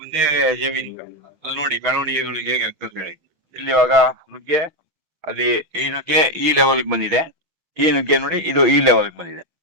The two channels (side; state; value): left; late; 6.2 ms